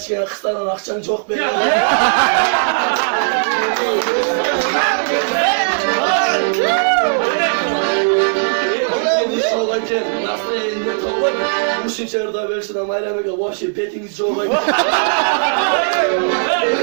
kısaran akşam çok belli. Nasıl eline kovay? Bu şimşerde versin ama elemege vahşi petiniz çoğay.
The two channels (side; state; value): left; silent; 68 dB below the other